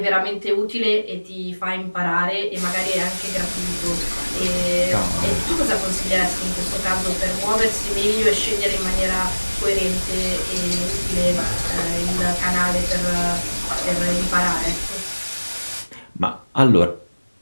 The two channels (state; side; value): inverted; both; correlation -1.00